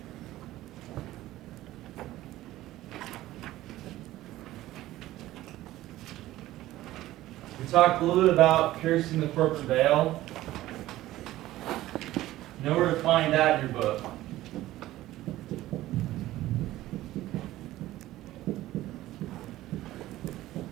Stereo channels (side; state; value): left; quieter; 15.6 dB